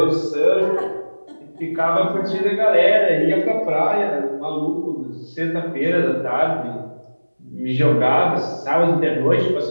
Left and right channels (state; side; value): inverted; both; correlation -1.00